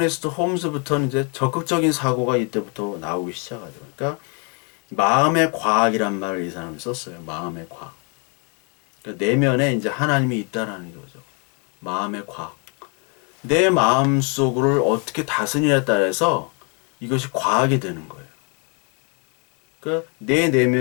홈즈부터는 이제 적극적인 사고가 이때부터 나오기 시작하죠. 그러니까 마음의 과학이란 말을 이 사람이 썼어요. 마음의 과학. 그러니까 내면에 이제 하나님이 있다라는 거죠. 마음의 과학. 내 마음 속을 어떻게 다스리냐에 따라서 이것이 과학이 되는 거예요. 그러니까 내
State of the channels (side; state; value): right; quieter; 35.8 dB